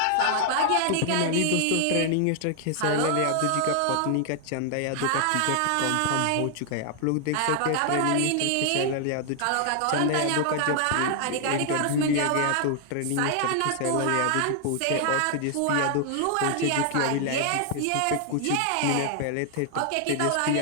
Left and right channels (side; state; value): both; different; correlation 0.00